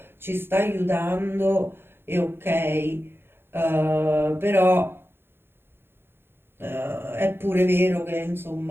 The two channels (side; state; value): left; late; 0.11 ms